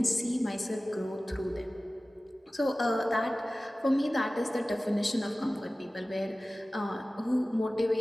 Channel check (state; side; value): normal; both; correlation 0.97